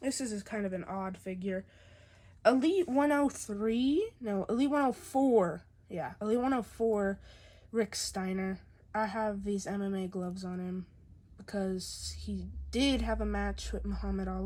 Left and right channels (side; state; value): both; identical; correlation 1.00